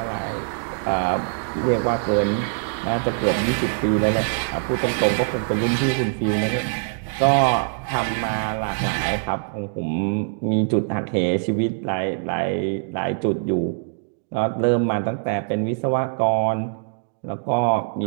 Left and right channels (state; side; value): silent; left; digital silence